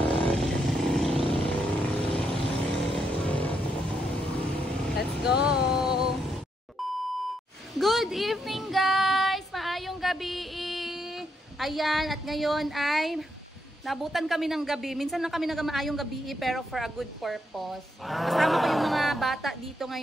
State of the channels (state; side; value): normal; both; correlation 0.79